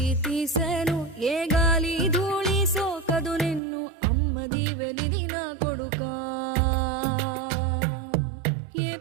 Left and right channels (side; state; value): left; drops out; at 3.6 s